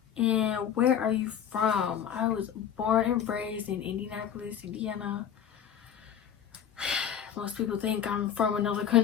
And where are you from? I was born and raised in Indianapolis, Indiana. Most people think I'm from another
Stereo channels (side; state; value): right; quieter; 8.9 dB